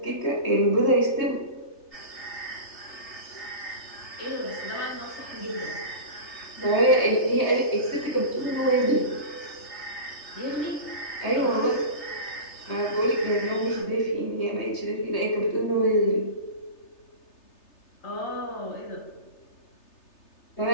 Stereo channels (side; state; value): right; late; 3.3 ms